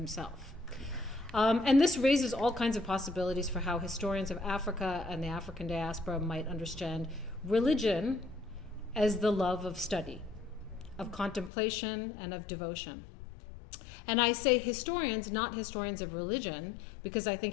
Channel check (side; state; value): right; drops out; at 11.5 s